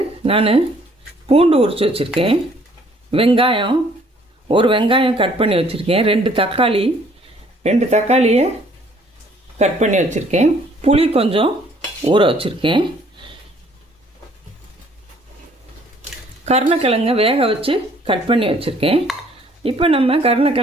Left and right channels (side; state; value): both; normal; correlation 0.60